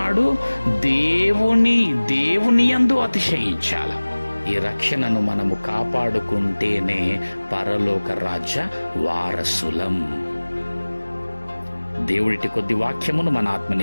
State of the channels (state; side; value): inverted; both; correlation -1.00